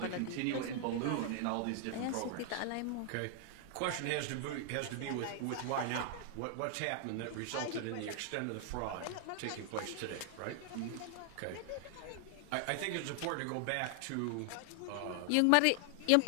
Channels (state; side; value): different; both; correlation 0.00